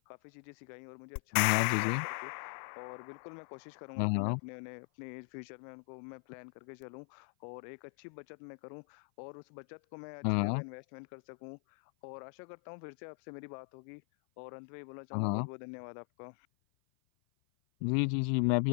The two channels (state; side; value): silent; right; 52 dB below the other